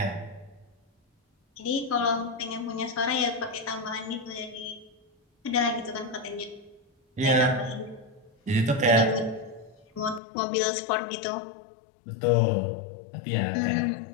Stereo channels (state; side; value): drops out; right; at 10.2 s